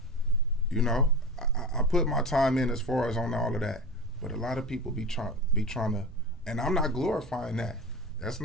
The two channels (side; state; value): both; normal; correlation 0.29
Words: I put my time in as far as on all of that. But a lot of people be trying to, and I'm not glorifying that. That's